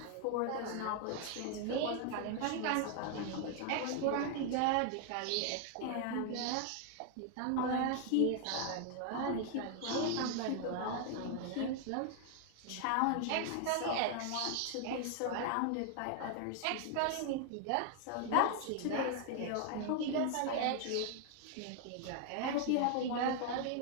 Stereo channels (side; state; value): both; different; correlation 0.00